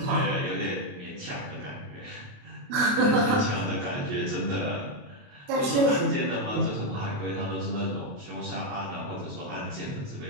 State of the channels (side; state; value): left; late; 28 ms